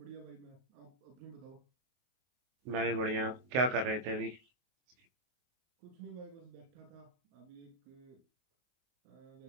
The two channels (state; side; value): late; left; 24 ms